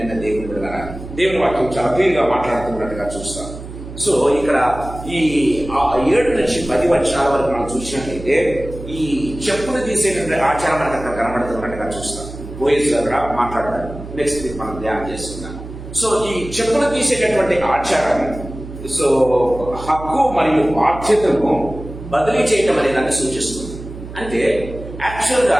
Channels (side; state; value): right; noise; hum, 12 dB below the sound